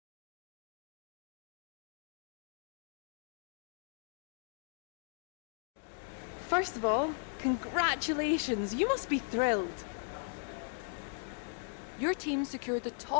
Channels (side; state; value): right; silent; digital silence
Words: First of all, congratulations, you must be thrilled. Your team secured the